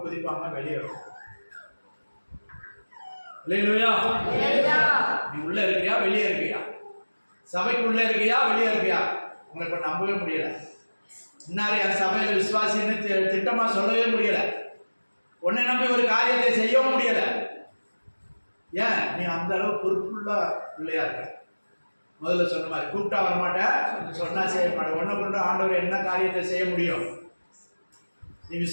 குதிப்பாங்க, வெளியே வருவாங்க. அல்லேலூயா. நீ உள்ள இருக்கியா வெளியே இருக்கியா? சபைக்கு உள்ள இருக்கியா வெளியே இருக்கியா? உங்களை இப்ப நம்பவே முடியல. இன்னாரு என் சபையில விசுவாசின்னு திட்டமா சொல்லவே முடியல. உன்னை நம்பி ஒரு காரியத்தை செய்யவும் முடியல. ஏன்? நீ அந்த அளவு பொறுப்புள்ள பிள்ளையா இருக்க. முதல்ல சொன்ன மாதிரி கூப்பிட்டா வரமாட்டேன், சொன்னா செய்ய மாட்டேன். ஒன்ன கொண்டு ஆண்டவர் என்ன காரியத்தை செய்ய முடியும்? நீ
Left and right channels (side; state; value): both; inverted; correlation -1.00